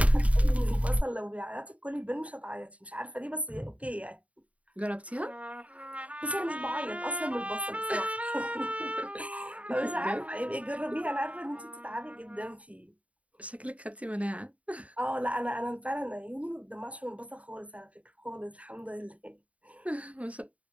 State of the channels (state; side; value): late; left; 0.067 ms